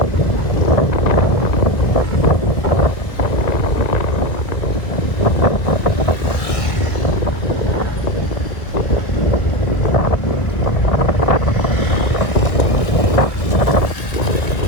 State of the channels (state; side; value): late; right; 1.7 ms